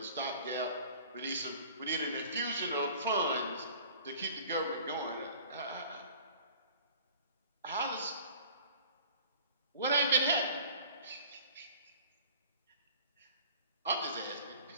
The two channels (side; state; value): both; inverted; correlation -0.48